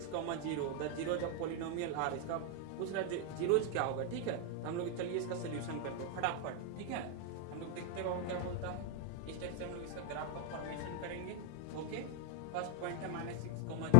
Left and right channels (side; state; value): both; different; correlation 0.00